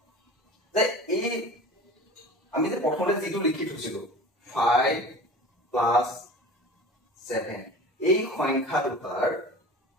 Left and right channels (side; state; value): both; normal; correlation 0.38